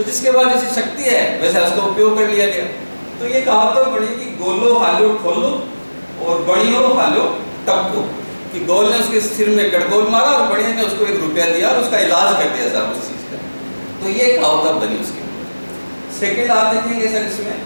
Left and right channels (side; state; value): both; inverted; correlation -1.00